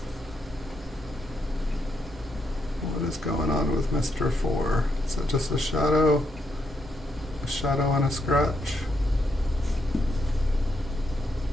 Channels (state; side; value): normal; both; correlation 0.79